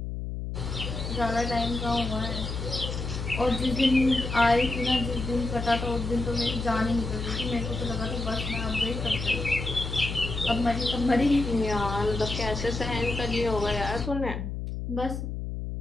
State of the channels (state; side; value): noise; left; hum, 5 dB below the sound